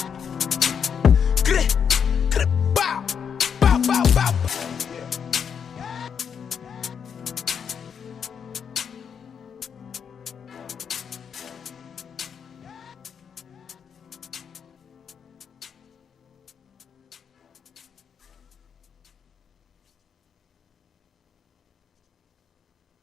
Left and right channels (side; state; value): right; quieter; 7.3 dB